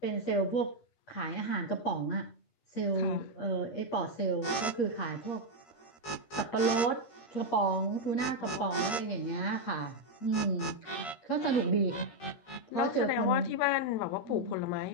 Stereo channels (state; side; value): late; right; 13 ms